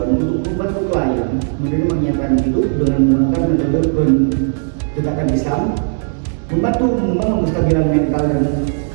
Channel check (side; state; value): left; silent; digital silence